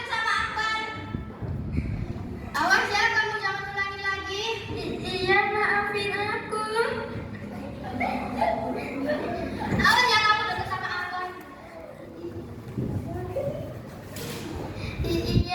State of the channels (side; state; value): both; identical; correlation 1.00